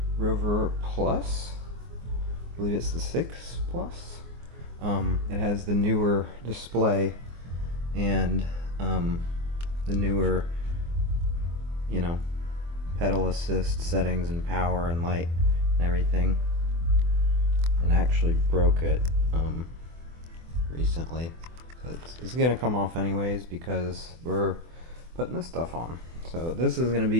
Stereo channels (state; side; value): late; left; 24 ms